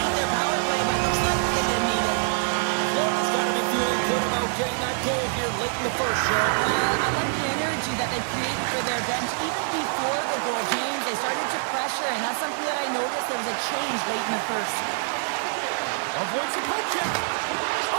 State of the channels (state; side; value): silent; left; 62 dB below the other